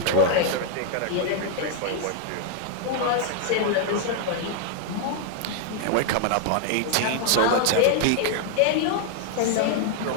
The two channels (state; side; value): different; both; correlation 0.00